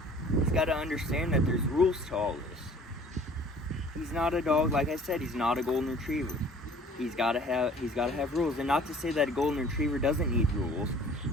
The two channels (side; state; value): both; normal; correlation 0.51